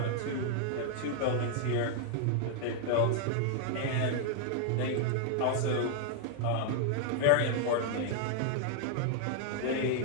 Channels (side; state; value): both; different; correlation 0.00